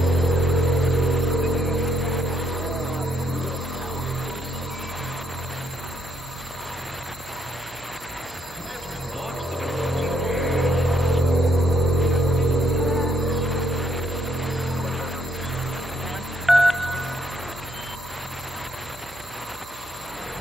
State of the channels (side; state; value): right; noise; hum, 21 dB below the sound